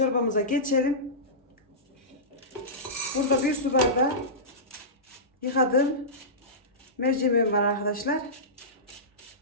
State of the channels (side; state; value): both; normal; correlation -0.18